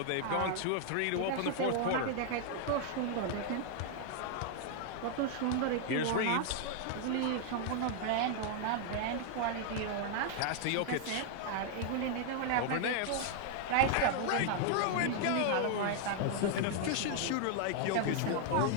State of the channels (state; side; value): different; both; correlation 0.00